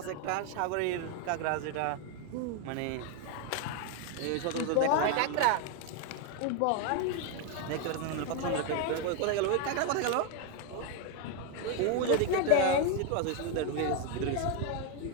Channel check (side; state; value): both; different; correlation 0.01